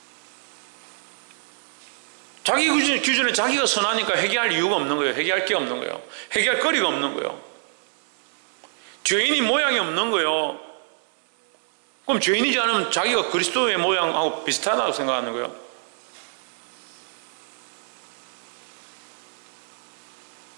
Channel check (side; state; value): left; silent; 60 dB below the other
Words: 자기 기준에 자기가 선하니까 회개할 이유가 없는 거예요. 회개할 게 없는 거예요. 회개할 거리가 없는 거예요. 죄인이 모양이 없는 거예요. 그럼 죄인이지 않으면 자기가 그리스도의 모양하고 비슷하다고 생각하는 거예요.